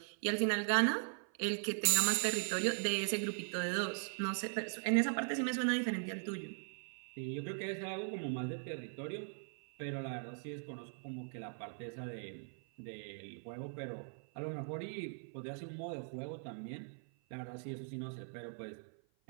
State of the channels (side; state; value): left; silent; 51 dB below the other